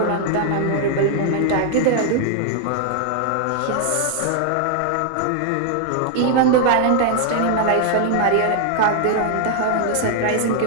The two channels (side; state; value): both; different; correlation 0.00